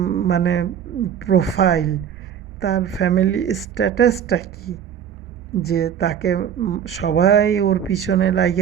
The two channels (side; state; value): left; quieter; 8.8 dB